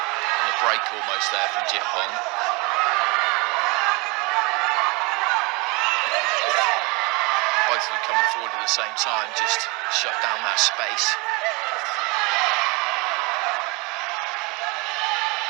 on the break almost there from Jitpong. Both of them coming forward at the same time, just shut down that space.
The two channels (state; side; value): quieter; left; 27.4 dB